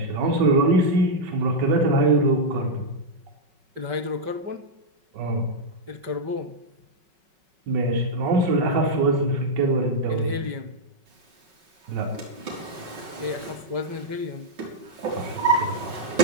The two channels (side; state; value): left; late; 5.3 ms